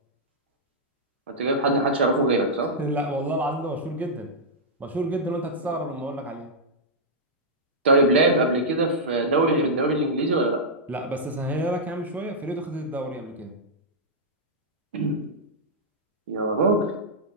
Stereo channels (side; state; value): both; normal; correlation -0.10